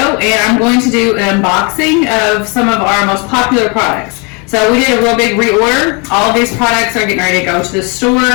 and I'm going to do an unboxing of some of our most popular products. So we did a real big reorder. All of these products are getting ready to go to the store.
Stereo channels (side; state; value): right; quieter; 32.1 dB